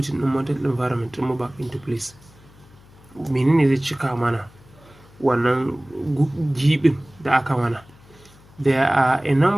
in mental environment ɗinmu back into place? Menene zai cika mana wannan gibin da aka mana? There are a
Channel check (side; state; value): left; noise; hum, 26 dB below the sound